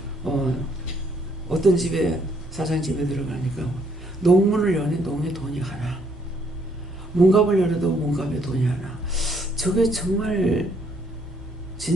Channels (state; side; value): normal; both; correlation 0.68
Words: 어떤 집에, 사장 집에 들어가니까 농문을 여니 농에 돈이 하나, 문갑을 열어도 문갑에 돈이 하나. 저게 정말